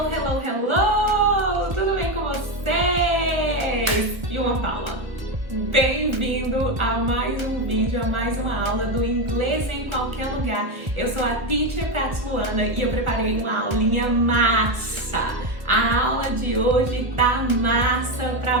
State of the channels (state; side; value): late; left; 1.2 ms